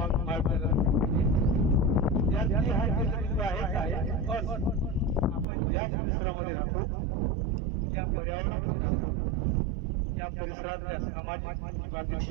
विद्यार्थी हा केंद्रबिंदू आहे। आपण ज्या परिसरामध्ये राहतो, त्या पर्यावरणामध्ये राहतो, त्या परिसरातल्या सामाजिक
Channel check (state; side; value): drops out; left; at 5.5 s